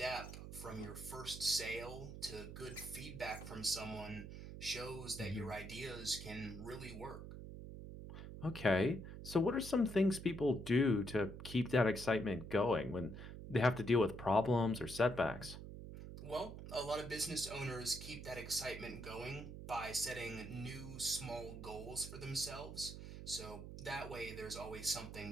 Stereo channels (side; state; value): right; noise; hum, 10 dB below the sound